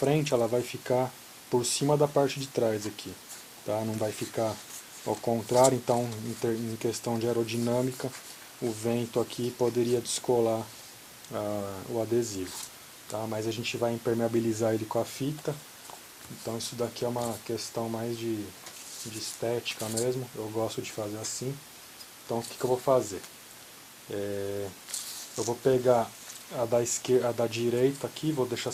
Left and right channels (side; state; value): both; identical; correlation 1.00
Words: ela vai ficar por cima da parte de trás aqui, tá? Não vai ficar ao contrário. Então, em questão de aerodinâmica, o vento aqui poderia descolar o adesivo, tá? Mas a gente vai impermeabilizar ele com a fita. Então isso daqui é uma questão mais de estética mesmo. Eu gosto de fazer assim. Então o que eu vou fazer? Eu vou pegar a da direita aqui, vou deixar